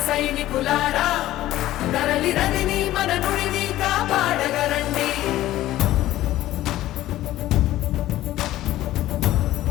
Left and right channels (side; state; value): right; quieter; 14.8 dB